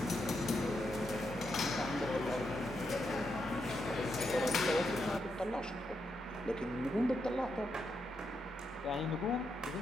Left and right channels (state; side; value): normal; both; correlation 0.83